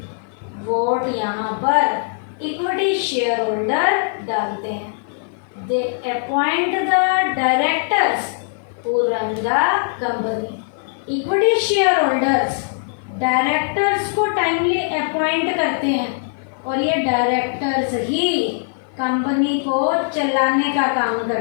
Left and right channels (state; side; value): silent; right; 56 dB below the other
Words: वोट यहाँ पर इक्विटी शेयर होल्डर डालते हैं। They appoint the directors who run the company। Equity share holders directors को टाइमली अपॉइंट करते हैं और ये डायरेक्टर्स ही कंपनी को चलाने का काम